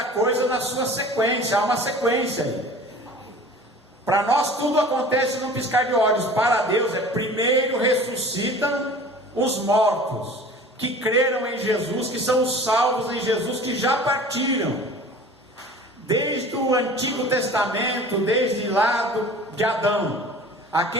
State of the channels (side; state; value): both; normal; correlation 0.42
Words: coisa na sua sequência, há uma sequência aí. Para nós tudo acontece num piscar de olhos. Para Deus primeiro ressuscitam os mortos, que creram em Jesus, que são os salvos em Jesus, que já partiram. Desde o Antigo Testamento, desde lá de Adão,